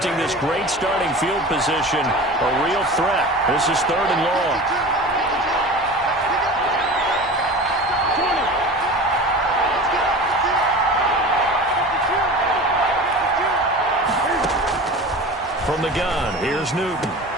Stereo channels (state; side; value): normal; both; correlation 0.35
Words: this great starting field position, a real threat. This is 3rd and long. From the gun, here's Newton.